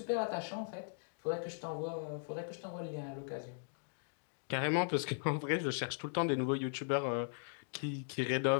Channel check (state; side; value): silent; right; digital silence